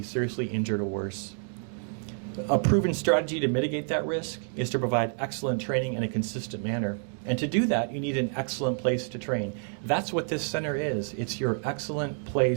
seriously injured or worse. A proven strategy to mitigate that risk is to provide excellent training in a consistent manner. And to do that, you need an excellent place to train. That's what this center is. It's your excellent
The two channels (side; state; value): left; silent; 59 dB below the other